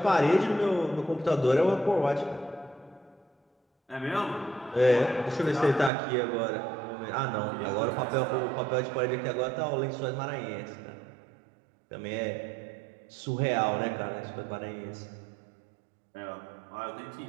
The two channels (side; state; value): left; drops out; at 5.9 s